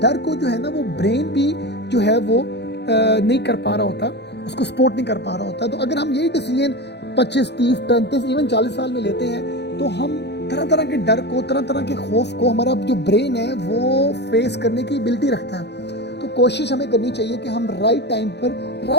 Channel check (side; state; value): right; late; 0.50 ms